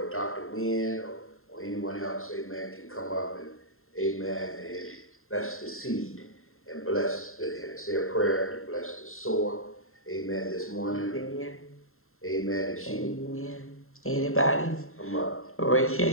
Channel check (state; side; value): late; right; 0.61 ms